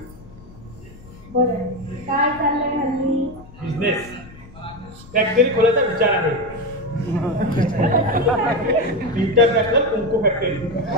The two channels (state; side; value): noise; left; rumble, 20 dB below the sound